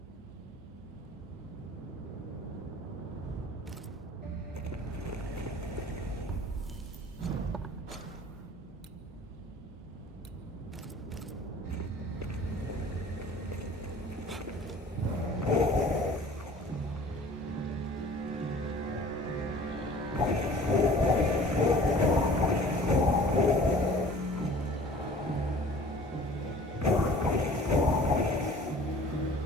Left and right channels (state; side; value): normal; both; correlation 0.47